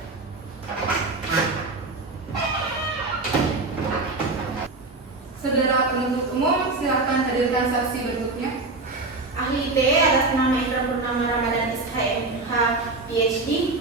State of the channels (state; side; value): quieter; left; 3.4 dB